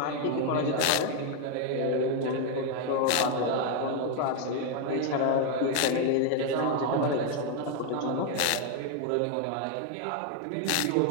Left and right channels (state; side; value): different; both; correlation 0.00